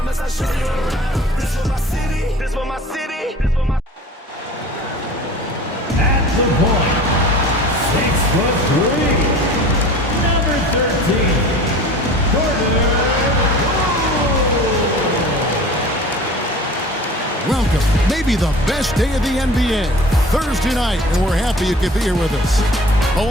At the point, 6'3", number 13, Charlotte. Welcome, maybe the best day of the NBA, Thursday night, and we're happy you could be here with us.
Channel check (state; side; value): normal; both; correlation 0.42